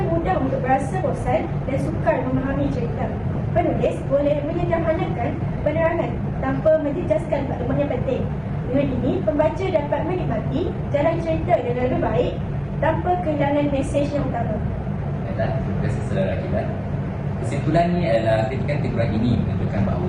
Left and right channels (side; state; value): both; identical; correlation 1.00